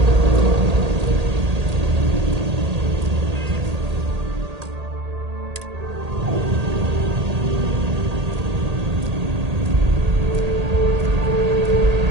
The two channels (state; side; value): late; left; 1.8 ms